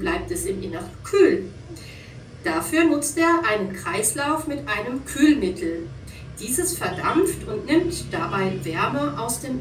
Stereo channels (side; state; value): both; identical; correlation 1.00